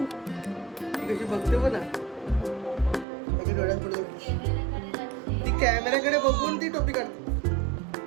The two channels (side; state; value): left; drops out; at 3.1 s